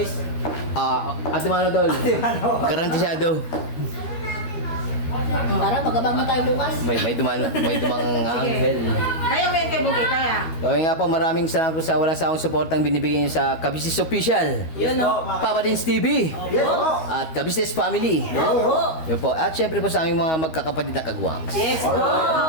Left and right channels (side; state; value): right; late; 13 ms